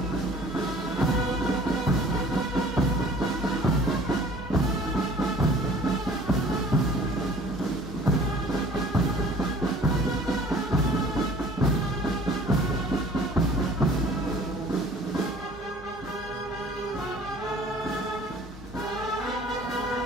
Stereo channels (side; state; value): both; normal; correlation 0.50